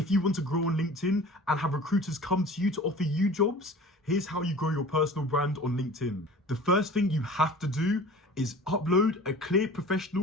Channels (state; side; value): normal; both; correlation 0.42